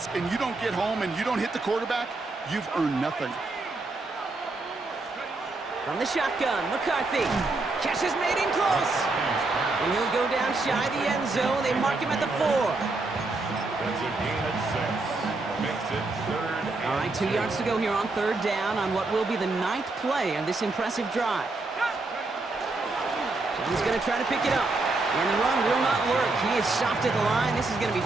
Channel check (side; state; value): left; quieter; 3.3 dB